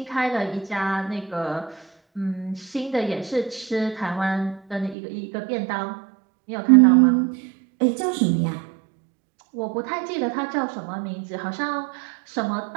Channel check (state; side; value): drops out; left; at 5.0 s